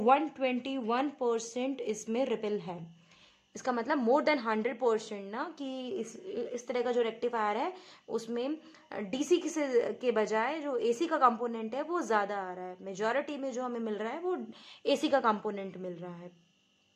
इसमें रिपल है। इसका मतलब मोर देन 100% ना, कि इस तरह का जो रेक्टिफायर है उसमें डीसी के बजाय जो एसी का कंपोनेंट है वो ज़्यादा आ रहा है। मेजॉरिटी में जो हमें मिल रहा है वो एसी का कंपोनेंट मिल रहा है।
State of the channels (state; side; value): identical; both; correlation 1.00